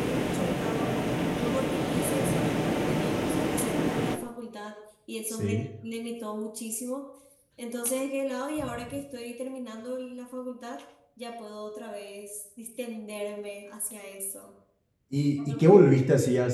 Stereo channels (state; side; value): identical; both; correlation 1.00